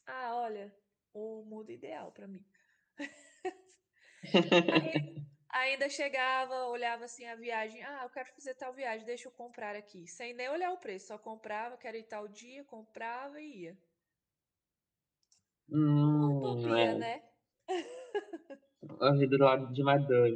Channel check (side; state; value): both; identical; correlation 1.00